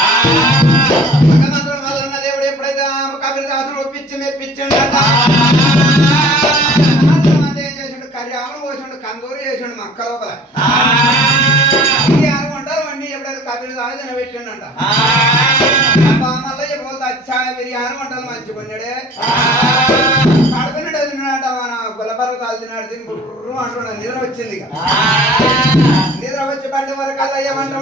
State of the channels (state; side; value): normal; both; correlation 0.47